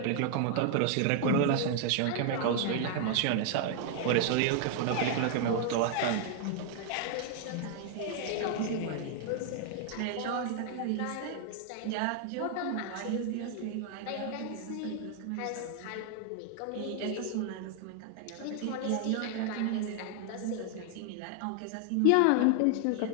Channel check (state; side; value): different; both; correlation 0.00